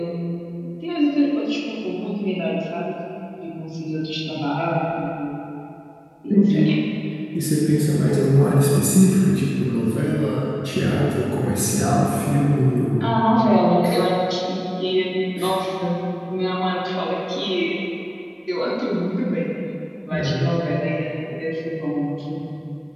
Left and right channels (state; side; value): identical; both; correlation 1.00